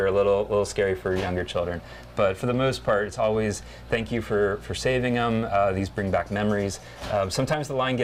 a little scary for younger children. But for the most part, it's always thank you for saving them. These bring back memories. Sometimes the line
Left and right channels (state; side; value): identical; both; correlation 1.00